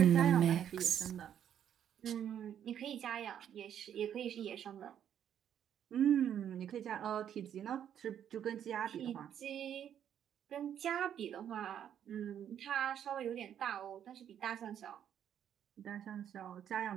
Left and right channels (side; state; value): left; quieter; 9.6 dB